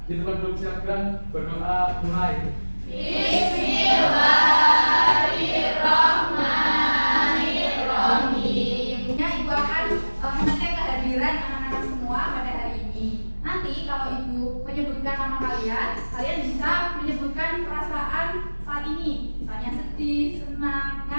Di tempat duduk silakan berdoa mulai. Bismillahirrahmanirrahim. Ibu akan mengecek kehadiran anak-anak semua pada hari ini. Nanti kalau Ibu menyebutkan nama kalian, kalian bisa menyebutkan perasaan saat ini. Misalnya sedih, senang,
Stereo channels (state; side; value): inverted; both; correlation -1.00